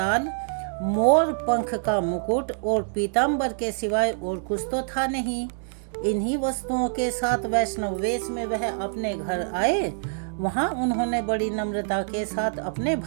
मोर पंख का मुकुट और पीताम्बर के सिवाय और कुछ तो था नहीं। इन्हीं वस्तुओं के साथ वैष्णव वेश में वह अपने घर आए। वहाँ उन्होंने बड़ी नम्रता के साथ अपने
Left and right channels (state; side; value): silent; left; digital silence